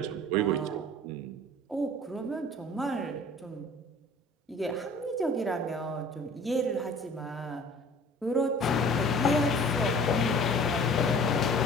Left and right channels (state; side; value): normal; both; correlation 0.47